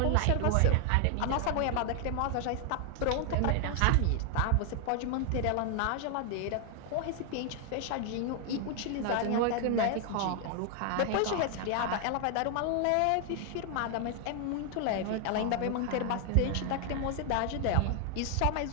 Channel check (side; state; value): both; different; correlation 0.00